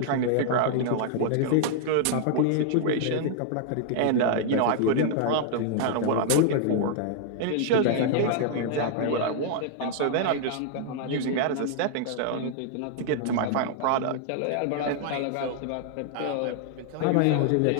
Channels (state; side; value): different; both; correlation -0.01